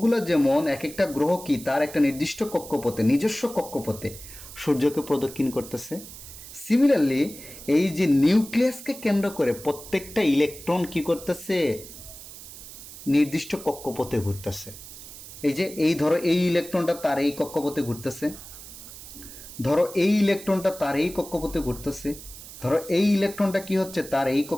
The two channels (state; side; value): noise; right; hiss, 15 dB below the sound